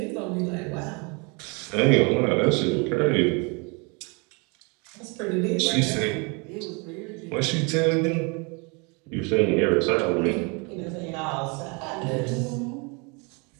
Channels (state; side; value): quieter; left; 31.4 dB